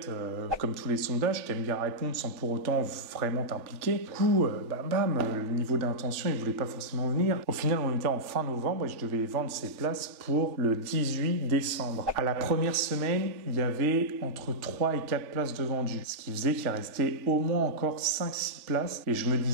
comme tous les sondages, t'aimes bien répondre sans pour autant vraiment t'impliquer. Du coup, le niveau d'intention, ils voulaient pas forcément venir. Au final, on était en fin novembre et je devais vendre ces places pour le 18 décembre. À la première semaine, il y avait entre 3 et 4 places de vendues. Ce qui faisait qu'il restait au moins encore 5-6 places. Et je me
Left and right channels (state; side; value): late; left; 3.4 ms